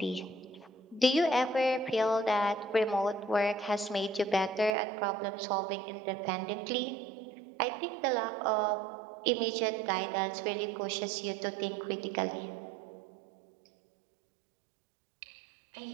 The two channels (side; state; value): left; drops out; at 4.8 s